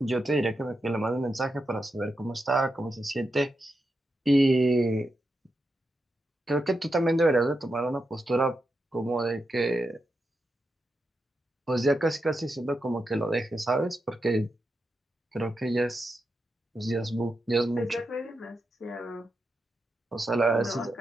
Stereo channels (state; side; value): normal; both; correlation 0.87